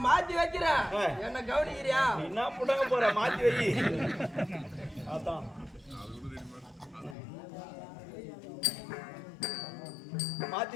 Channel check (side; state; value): right; drops out; at 7.2 s